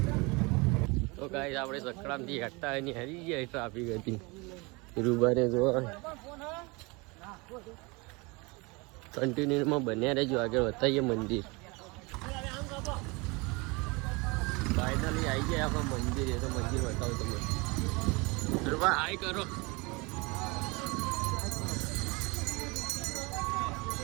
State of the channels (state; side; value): quieter; left; 26.8 dB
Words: તો ગાઈસ આપણે સકડામ થી હટતા ની હરી ગયા ટ્રાફિક હતી. રૂબાને જો કન્ટિન્યુ માં બન્યા રહેજો. આગળ બતાવીએ મંદિર. ફાઇનલી આવી ગયા આપણા મંદિર. એ તો મંદિર બતાવું તમને. રૂબા હાય કરો.